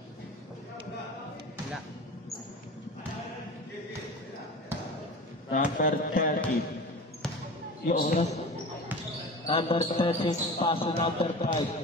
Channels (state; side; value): normal; both; correlation 0.34